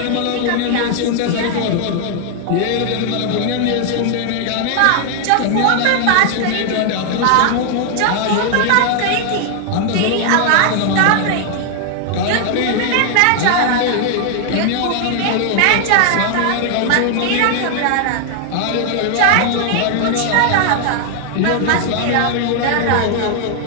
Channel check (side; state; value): both; different; correlation 0.00